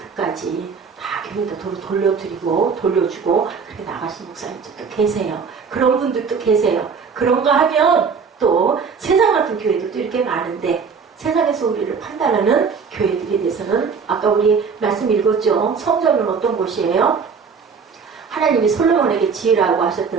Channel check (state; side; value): quieter; left; 5.7 dB